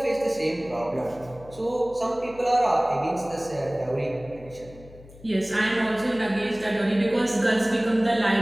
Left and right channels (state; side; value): noise; left; hum, 21 dB below the sound